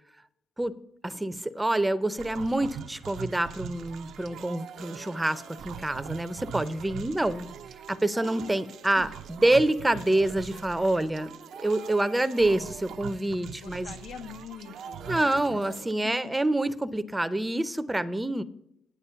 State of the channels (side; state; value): both; normal; correlation 0.96